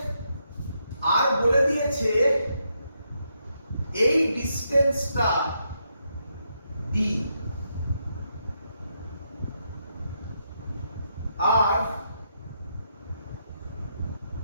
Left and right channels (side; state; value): both; inverted; correlation -0.80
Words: আর বলে দিয়েছে এই ডিসটেন্সটা ডি, আর